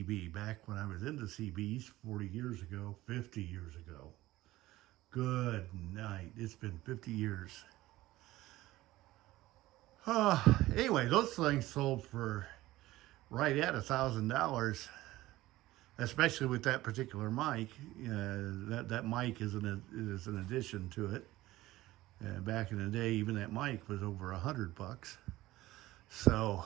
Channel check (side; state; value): left; quieter; 17.0 dB